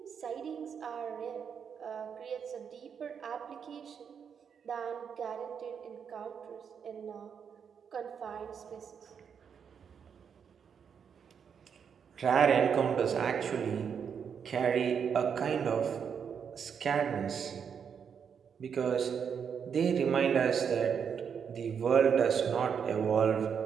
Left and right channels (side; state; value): left; quieter; 7.1 dB